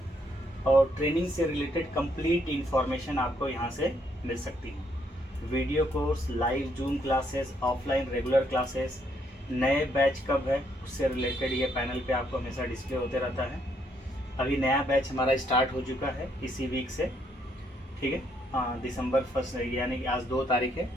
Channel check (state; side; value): normal; both; correlation 0.72